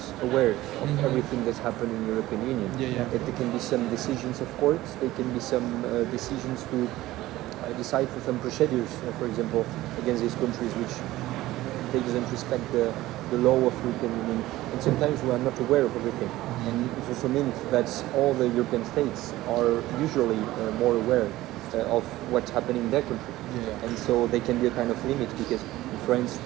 aware of everything that's happened in the European Union. That there can be some decisions of courts, there can be some decisions to decide for some procedures, for example, against these countries which they doesn't respect the law of the European Union. And sometimes we are not aware of everything. And it also means that all the European states are usually more aware of what's happening in their country. And so they can be a kind of limit, because in France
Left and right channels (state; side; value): quieter; left; 16.6 dB